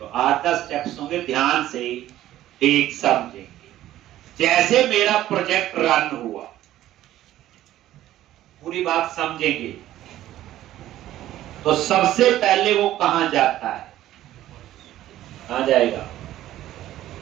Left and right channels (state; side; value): quieter; left; 13.7 dB